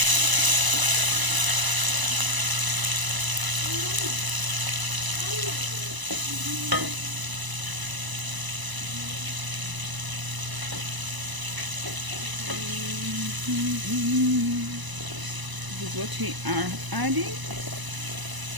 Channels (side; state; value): left; late; 1.0 ms